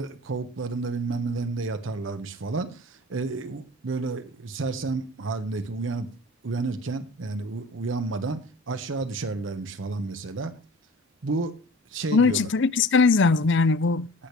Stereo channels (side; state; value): both; normal; correlation 0.43